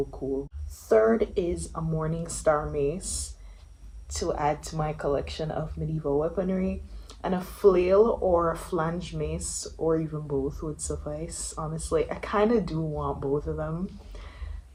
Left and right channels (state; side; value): identical; both; correlation 1.00